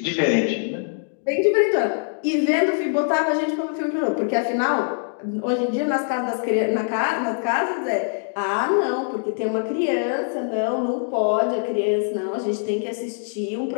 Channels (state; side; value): silent; right; digital silence